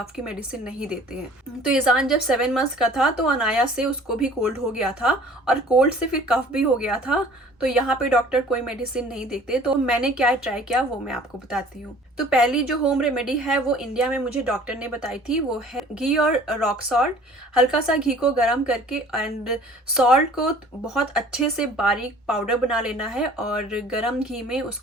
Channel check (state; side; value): normal; both; correlation 0.50